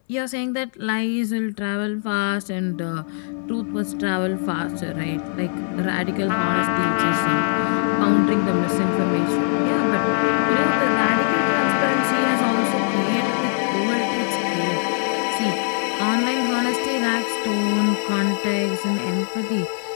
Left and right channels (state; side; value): silent; right; 64 dB below the other